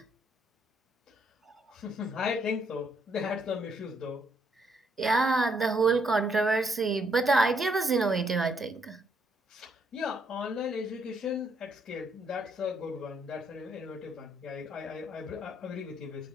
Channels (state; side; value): normal; both; correlation 0.72